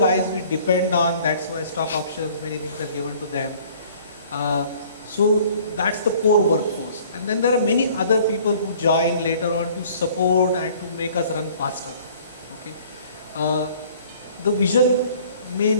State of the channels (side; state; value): both; inverted; correlation -0.53